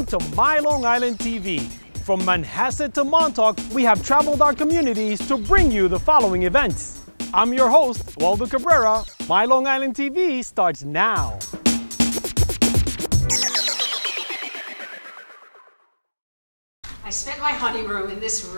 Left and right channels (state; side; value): inverted; both; correlation -1.00